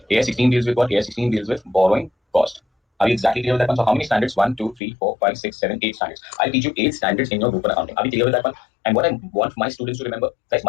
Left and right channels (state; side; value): drops out; right; at 4.8 s